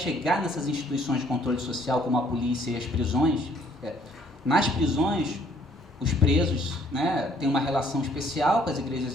nessas instituições de controle social, como a polícia e as prisões, nas prisões, os presos, né, têm uma relação especial com as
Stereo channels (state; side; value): normal; both; correlation 0.63